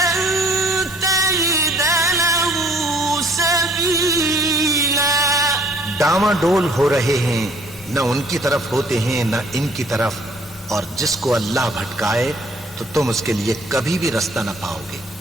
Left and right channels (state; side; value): normal; both; correlation 0.58